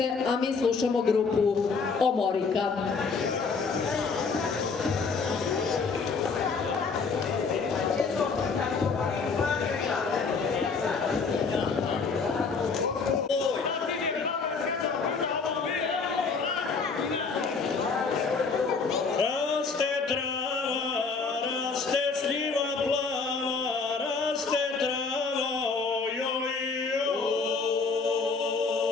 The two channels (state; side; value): quieter; right; 4.8 dB